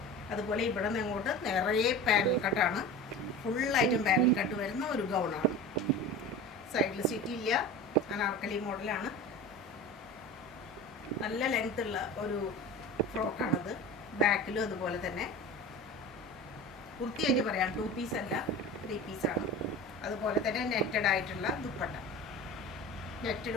അതുപോലെ ഇവിടെ നിന്ന് അങ്ങോട്ട് നിറയെ പാനൽ കട്ടാണ്. ഫുള്ളായിട്ടും പാനൽ കട്ട് വരുന്ന ഒരു ഗൗണാണ്. സൈഡിൽ സിറ്റിയില്ല, അനാർക്കലി മോഡലാണ്. നല്ല ലെങ്ത് ഉള്ള ഒരു ഫ്രോക്കാണത്. ബാക്കിലും അതുപോലെ തന്നെ. വൃത്തിയായിട്ട് പറയാം, 2 പീസ് അല്ല 3 പീസാണ്. അതുപോലെ തന്നെ നെറ്റഡ് ആയിട്ടുള്ള ദുപ്പട്ട,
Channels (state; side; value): normal; both; correlation 0.33